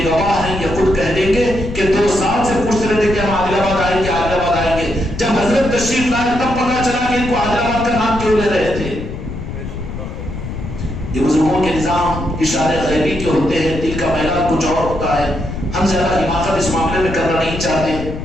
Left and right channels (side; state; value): left; noise; rumble, 7 dB below the sound